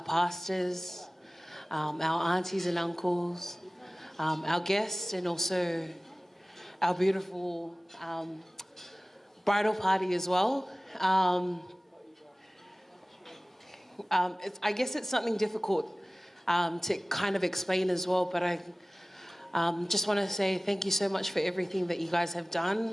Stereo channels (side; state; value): both; normal; correlation 0.98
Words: pastors, our aunties and uncles, our guests, and also our beautiful bridal party as well. I guess it's something difficult to kind of explain as well, but I just want to say thank you so much for everything that you guys have